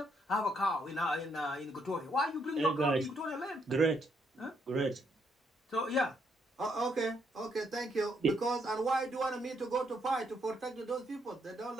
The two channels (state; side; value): normal; both; correlation 0.74